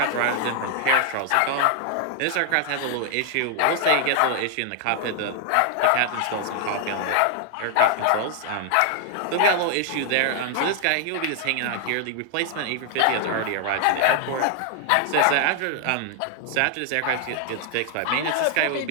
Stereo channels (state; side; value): different; both; correlation 0.00